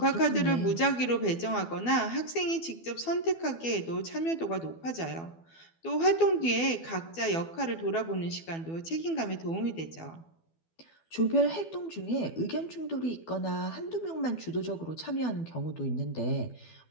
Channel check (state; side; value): late; right; 12 ms